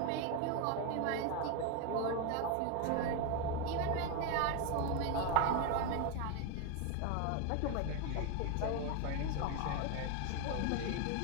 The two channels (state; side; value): different; both; correlation 0.02